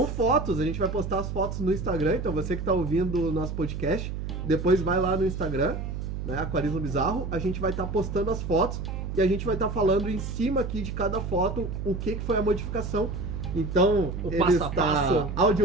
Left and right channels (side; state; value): right; noise; hum, 5 dB below the sound